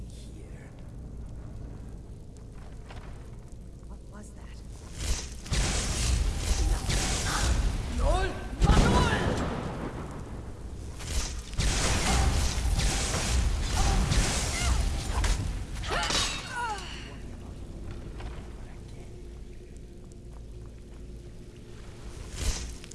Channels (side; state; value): both; identical; correlation 1.00